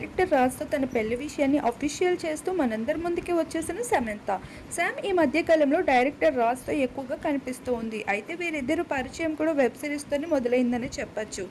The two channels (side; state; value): both; identical; correlation 1.00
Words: రాజ్తో తన పెళ్లి విషయాన్ని అఫీషియల్ చేస్తూ మనందరి ముందుకి వచ్చేసిన సమంత. శామ్ ఈ మధ్య కాలంలో డైరెక్టర్ రాజ్తో ఎక్కువగా కనిపిస్తూ ఉంది. అయితే వీరిద్దరు పరిచయం కూడా వెబ్ సిరీస్తోనే మొదలైందని చెప్పొచ్చు.